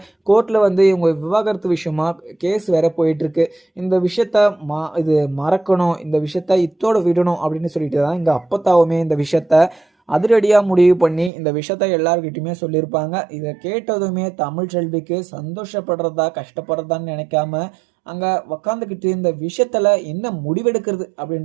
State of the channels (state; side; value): drops out; left; at 11.3 s